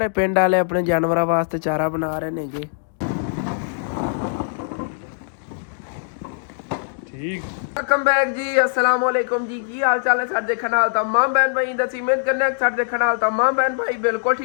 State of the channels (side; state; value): right; silent; digital silence